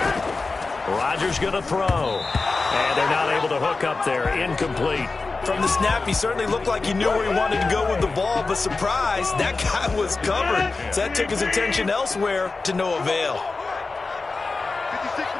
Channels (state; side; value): quieter; right; 3.9 dB